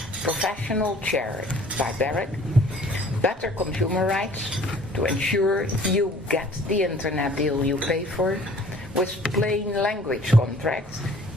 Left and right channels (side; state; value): both; normal; correlation 0.53